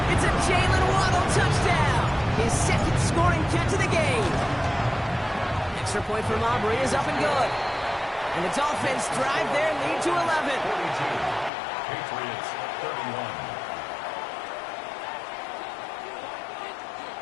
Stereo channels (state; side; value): drops out; right; at 11.5 s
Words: It's a Jalen Waddle touchdown. His 2nd scoring catch of the game. Extra point from Aubrey is up and good. And the Dolphins drive their lead to 11. 42. Patriots 31.